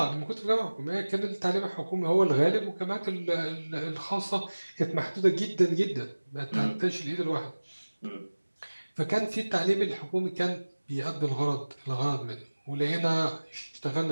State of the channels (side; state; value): both; inverted; correlation -1.00